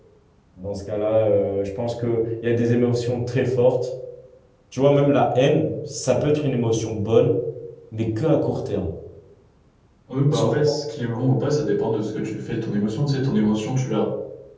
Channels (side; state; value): both; identical; correlation 1.00